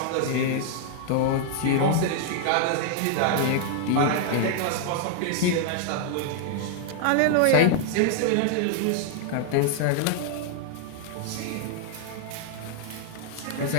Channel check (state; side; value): different; both; correlation 0.00